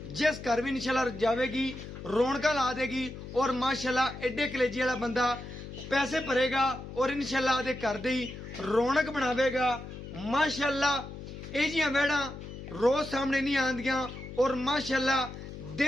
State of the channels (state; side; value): noise; left; hum, 11 dB below the sound